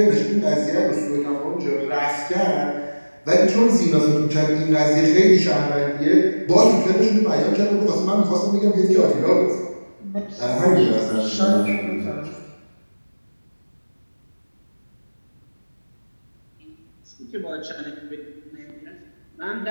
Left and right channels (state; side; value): inverted; both; correlation -1.00